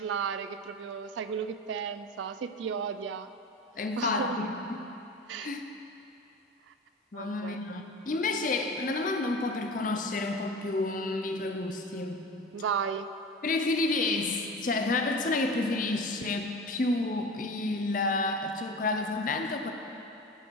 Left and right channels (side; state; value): both; normal; correlation 0.33